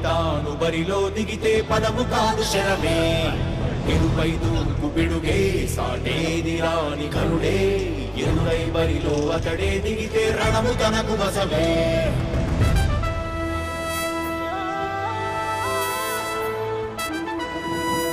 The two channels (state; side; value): identical; both; correlation 1.00